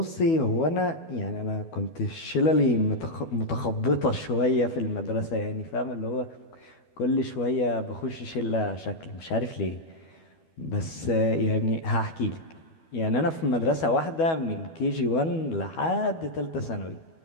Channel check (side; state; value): right; late; 12 ms